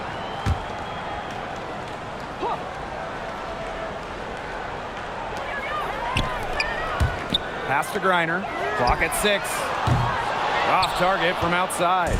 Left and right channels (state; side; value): identical; both; correlation 1.00